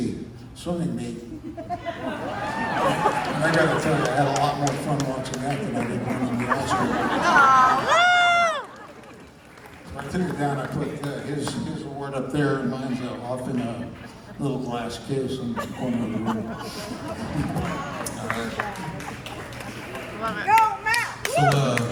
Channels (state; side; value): identical; both; correlation 1.00